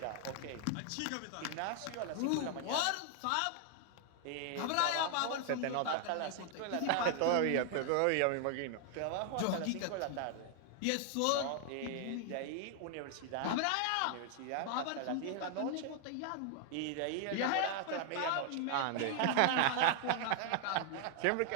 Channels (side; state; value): both; different; correlation 0.00